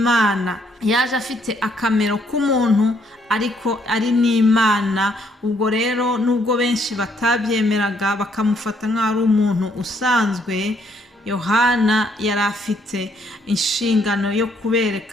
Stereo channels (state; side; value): normal; both; correlation 0.69